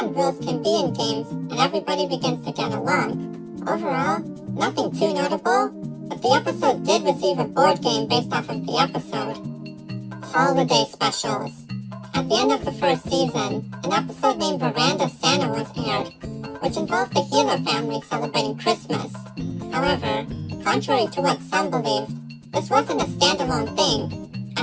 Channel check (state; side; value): identical; both; correlation 1.00